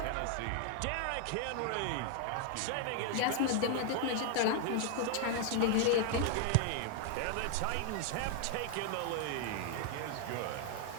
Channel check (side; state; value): both; different; correlation 0.00